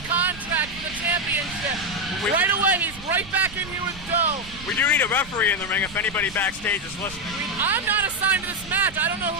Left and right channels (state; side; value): noise; right; rumble, 16 dB below the sound